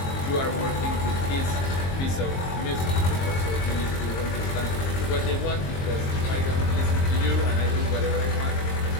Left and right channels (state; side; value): late; right; 22 ms